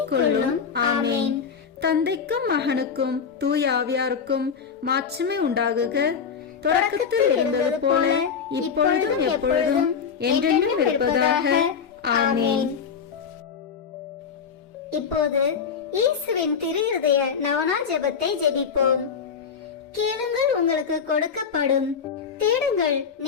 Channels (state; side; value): quieter; right; 6.6 dB